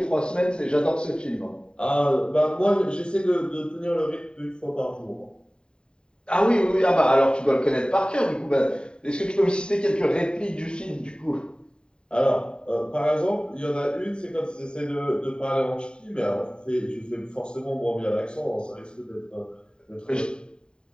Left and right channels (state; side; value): late; right; 0.049 ms